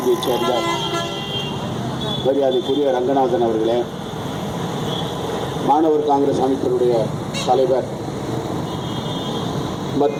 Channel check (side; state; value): both; identical; correlation 1.00